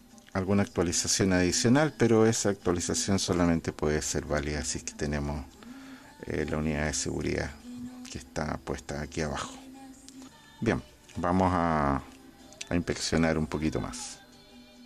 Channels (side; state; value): both; identical; correlation 1.00